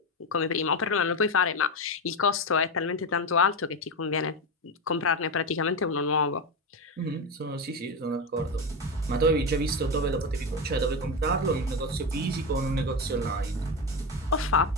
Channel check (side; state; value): both; normal; correlation 0.15